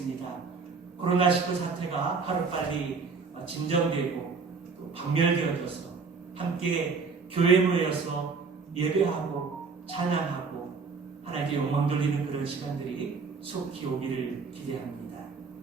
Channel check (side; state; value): left; quieter; 4.9 dB